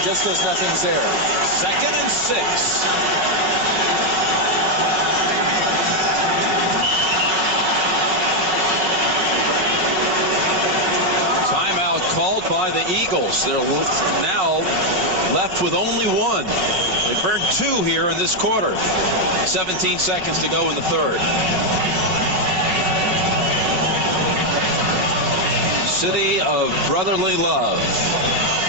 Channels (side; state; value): left; late; 5.5 ms